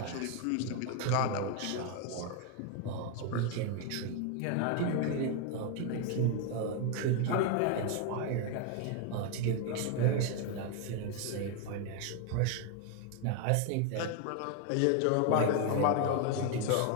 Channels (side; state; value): both; different; correlation 0.01